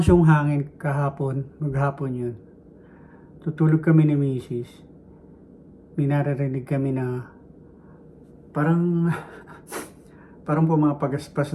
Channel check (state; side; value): identical; both; correlation 1.00